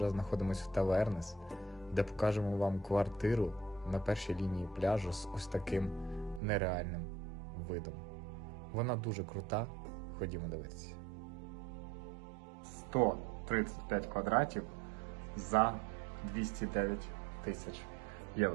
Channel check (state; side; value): drops out; left; at 6.4 s